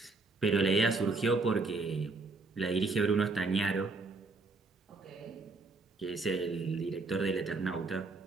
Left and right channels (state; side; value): quieter; left; 3.7 dB